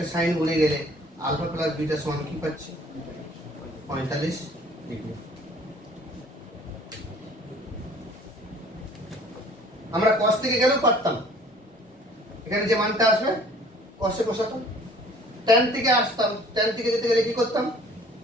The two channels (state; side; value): normal; both; correlation 0.53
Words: সাইন গুণে গেলে আলফা প্লাস বিটা সমান কি পাচ্ছি? 45 ডিগ্রি। আমরা cos থেকে গেলেও পারতাম, এখানে যে মানটা আসবে cos এ বসাতাম। tan থেকে আসতাম, tan থেকে যেতে গেলে কি করতাম?